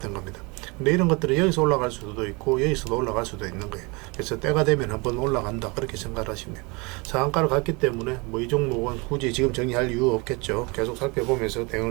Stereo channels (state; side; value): quieter; left; 28.1 dB